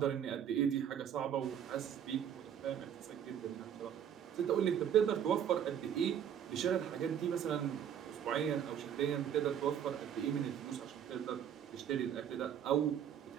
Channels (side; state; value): left; quieter; 9.1 dB